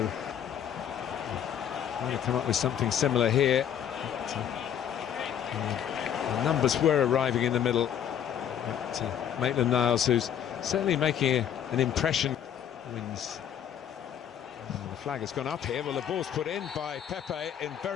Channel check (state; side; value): quieter; right; 9.4 dB